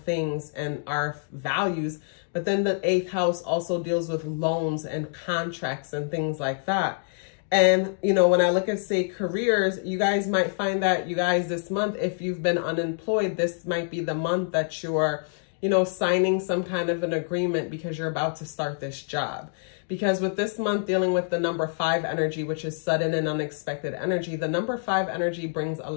and our values. But then the 8th house also deals with loans and contracts and things like that. And, you know, when I look at, say, careers, you guys might find that you guys this month, if you've been unemployed, this might be the month that you're, you know, signing some kind of an agreement because you're about to start this job. Because with this month dealing with the number 5 energy, which is sudden and unexpected energy, the number 5 energy brings a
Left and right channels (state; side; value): silent; right; digital silence